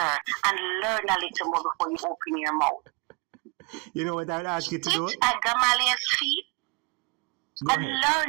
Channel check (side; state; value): left; quieter; 29.2 dB